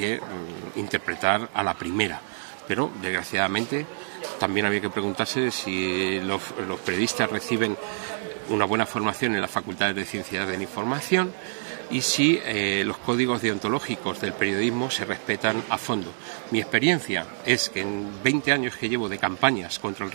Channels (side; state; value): left; silent; 61 dB below the other